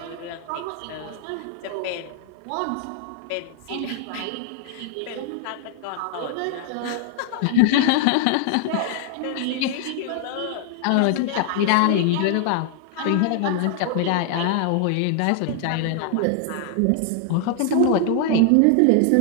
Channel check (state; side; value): different; both; correlation 0.00